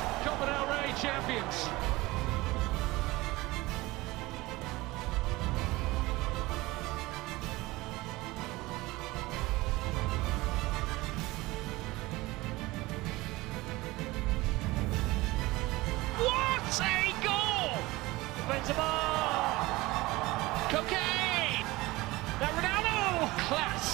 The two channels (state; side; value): quieter; left; 20.4 dB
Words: Copa del Rey champions. What a goal! Benzema! Cocaine! That Ronaldo!